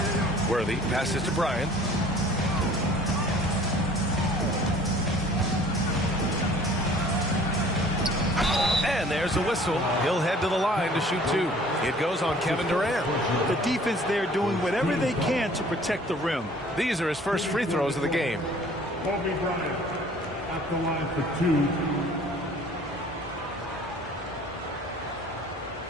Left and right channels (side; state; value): both; normal; correlation 0.52